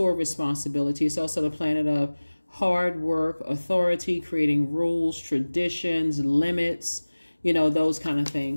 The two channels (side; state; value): both; inverted; correlation -1.00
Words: responsibility. It's also the planet of hard work, authority, creating rules, traditions, limits, you know, those kind of